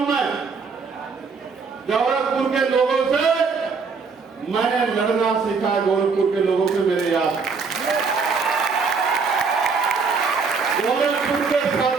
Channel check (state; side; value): quieter; left; 5.0 dB